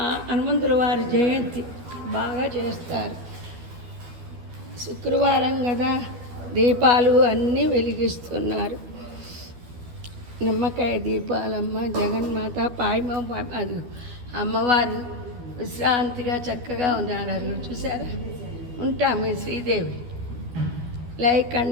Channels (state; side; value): late; left; 12 ms